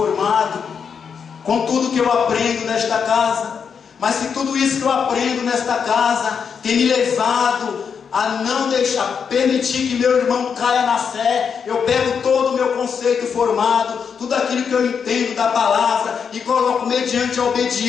com tudo que eu aprendo nesta casa. Mas se tudo isso que eu aprendo nesta casa tem me levado a não deixar, permitir que meu irmão caia na fé, eu pego todo o meu conceito formado, tudo aquilo que eu entendo da palavra e coloco mediante a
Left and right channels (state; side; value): quieter; right; 6.6 dB